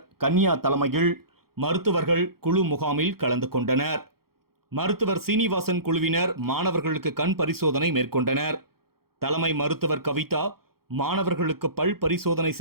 கன்யா தலைமையில் மருத்துவர்கள் குழு முகாமில் கலந்து கொண்டனர். மருத்துவர் சீனிவாசன் குழுவினர் மாணவர்களுக்கு கண் பரிசோதனை மேற்கொண்டனர். தலைமை மருத்துவர் கவிதா மாணவர்களுக்கு பல் பரிசோதனை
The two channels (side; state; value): left; late; 0.94 ms